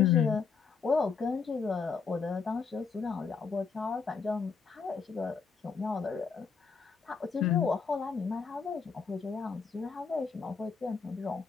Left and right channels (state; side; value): quieter; right; 5.5 dB